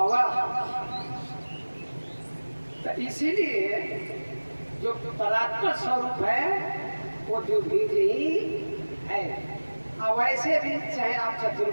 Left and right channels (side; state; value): both; inverted; correlation -1.00